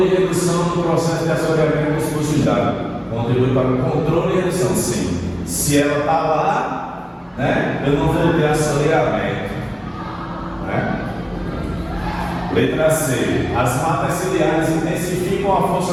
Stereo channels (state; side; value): identical; both; correlation 1.00